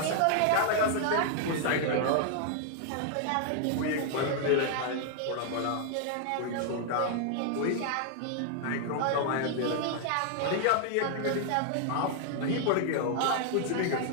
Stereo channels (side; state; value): both; different; correlation 0.00